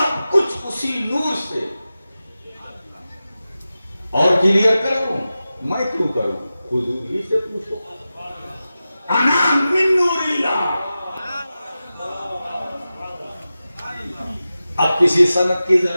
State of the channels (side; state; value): both; inverted; correlation -0.94